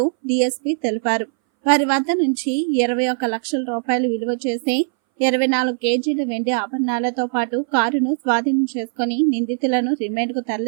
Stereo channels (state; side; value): silent; left; 63 dB below the other